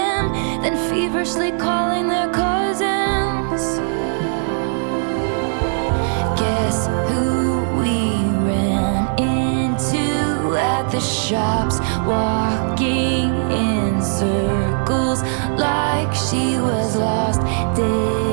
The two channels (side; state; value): left; silent; 66 dB below the other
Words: then feverishly calling their cousins. Guess who we ran into at the shops, walking in circles like she was lost.